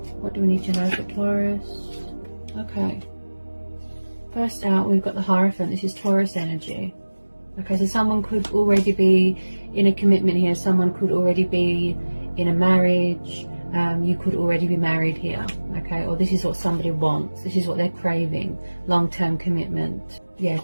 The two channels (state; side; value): inverted; both; correlation -1.00